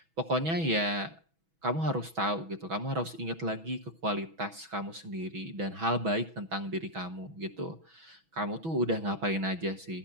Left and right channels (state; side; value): late; left; 6.1 ms